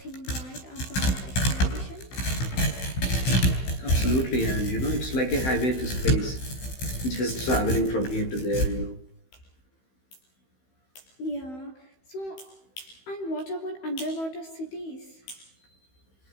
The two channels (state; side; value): late; right; 15 ms